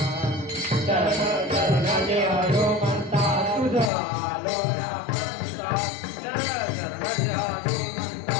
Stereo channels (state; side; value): drops out; right; at 3.9 s